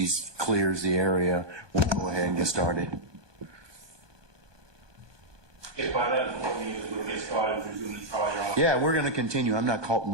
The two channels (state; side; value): late; left; 1.2 ms